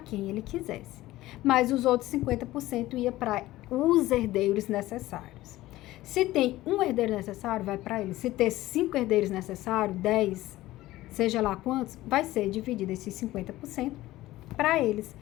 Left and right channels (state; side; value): quieter; right; 16.6 dB